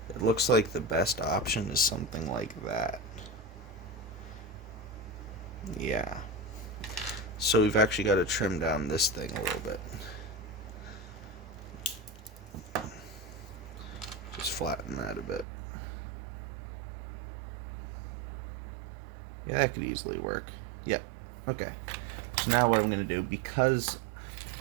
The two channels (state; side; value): drops out; left; at 15.5 s